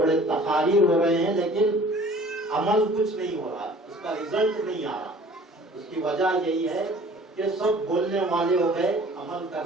تقاریر ہو رہے ہیں, لیکن عمل کچھ نہیں ہو رہا, اس کا رزلٹ نہیں آ رہا. اس کی وجہ یہی ہے کہ سب بولنے والے ہو گئے, عمل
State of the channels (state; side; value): normal; both; correlation 0.49